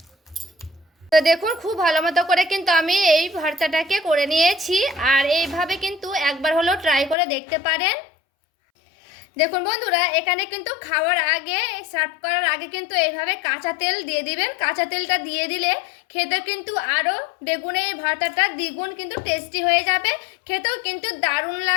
তো দেখুন খুব ভালো মতো করে কিন্তু আমি এই ভর্তাটাকে করে নিয়েছি। আর এইভাবে কিন্তু একবার হলেও ট্রাই করে দেখতে পারেন। দেখুন বন্ধুরা, এখানে কিন্তু খাওয়ার আগে সার্ভ করার আগে কিন্তু এইভাবে কাঁচা তেল দিয়ে দিবেন। কাঁচা তেলটা দিয়ে দিলে খেতে কিন্তু আরও বেগুনের এই ভর্তাটা দ্বিগুণ কিন্তু টেস্টি হয়ে যাবে। খেতেও কিন্তু দারুণ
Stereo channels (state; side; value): drops out; right; at 7.2 s